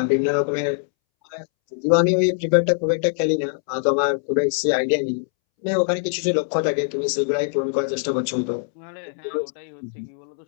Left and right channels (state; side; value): silent; right; 64 dB below the other